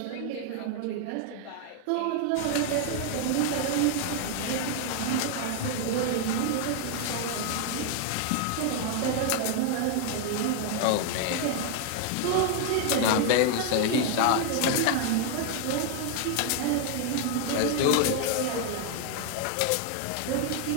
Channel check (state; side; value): different; both; correlation 0.00